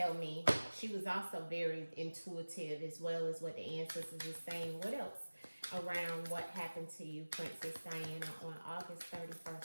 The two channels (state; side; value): inverted; both; correlation -1.00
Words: me? She was also very intuitive as well as what the ancestors is saying. What else around what happened to you, Princess Diana, on August